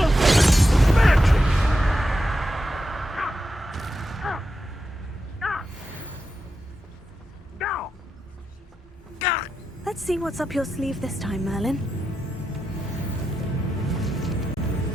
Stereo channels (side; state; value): both; normal; correlation 0.88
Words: Let's see what's up your sleeve this time, Merlin.